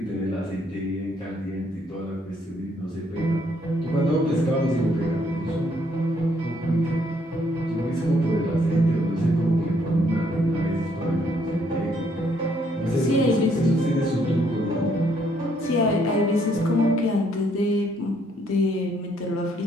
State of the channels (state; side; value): normal; both; correlation 0.69